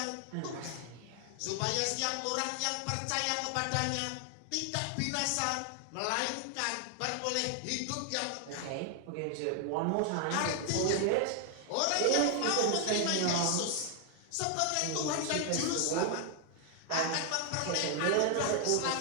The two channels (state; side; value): different; both; correlation 0.00